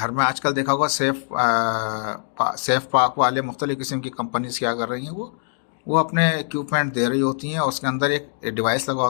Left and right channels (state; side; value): silent; right; digital silence